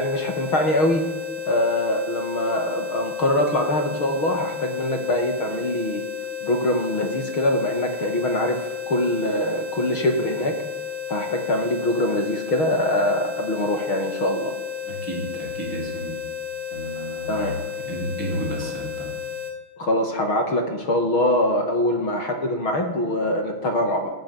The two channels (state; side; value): late; right; 6.3 ms